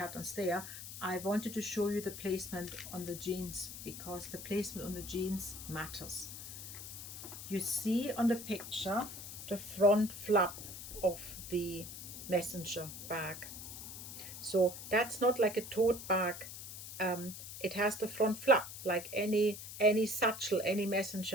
there. I wanted to show you the placement on the jeans because the placement on the jeans matters. You see on the picture the front flap of the messenger bag. So that's not like a tote bag. It has the front flap like any satchel, any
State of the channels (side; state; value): left; noise; hiss, 10 dB below the sound